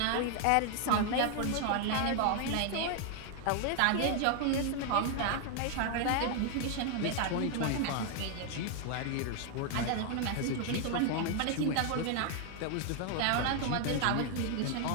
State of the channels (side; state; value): both; different; correlation 0.00